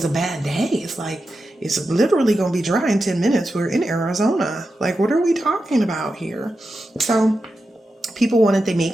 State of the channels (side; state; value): both; normal; correlation 0.90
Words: a bad day. It's like, it's literally going to be dry in 10 minutes. We're in Arizona. Like, what are we talking about here? So people wanted to